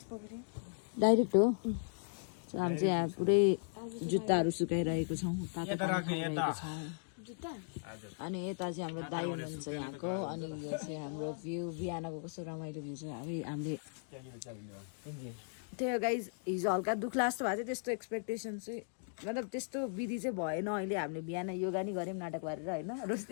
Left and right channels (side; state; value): right; silent; digital silence